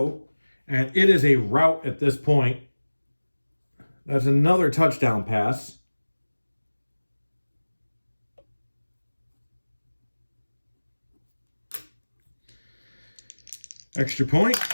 And it is a rout at this point. That's another touchdown pass. Extra point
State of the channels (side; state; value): both; inverted; correlation -1.00